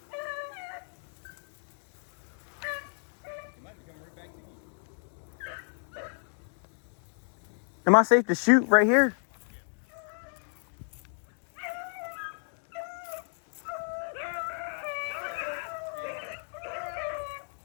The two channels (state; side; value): silent; right; 56 dB below the other